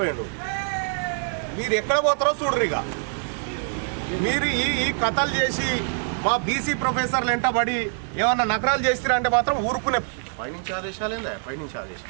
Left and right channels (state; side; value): silent; left; 59 dB below the other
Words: మీరు ఎక్కడ పోతారో చూడరు. ఇక మీరు ఈ కథలు చేసి మా బీసీ ప్రొఫెసర్లు వెంటబడి ఏమన్నా నకరాలు చేస్తారా అంటే మాత్రం ఊరుకునే. పైనుంచి ఆదేశాలు ఏందా? పైనుంచి